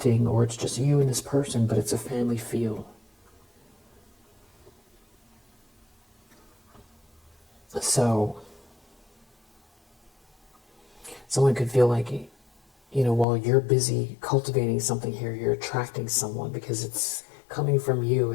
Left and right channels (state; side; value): drops out; right; at 13.2 s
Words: or it's just you and this person, but it's a family feel. So, someone could feel like, while you're busy cultivating something here, you're attracting someone because it's coming from